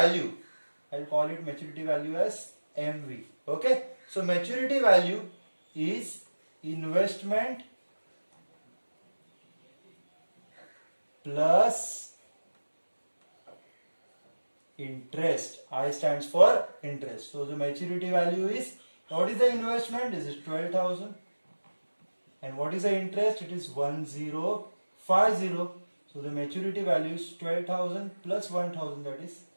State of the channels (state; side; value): inverted; both; correlation -1.00